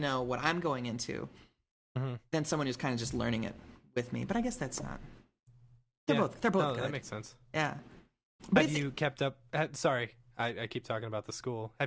what I'm going into than someone who's kind of just learning it with me. But I guess that's not. They're both good. That makes sense. Yeah. But have you kept up? Sorry, I keep talking about the school.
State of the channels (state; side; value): identical; both; correlation 1.00